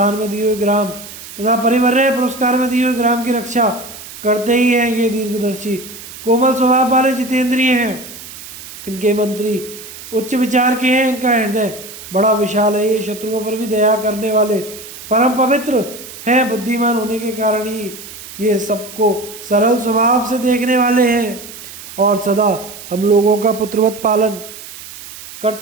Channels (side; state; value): right; noise; hiss, 14 dB below the sound